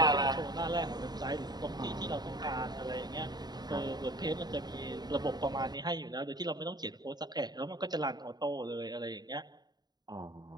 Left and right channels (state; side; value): late; left; 0.20 ms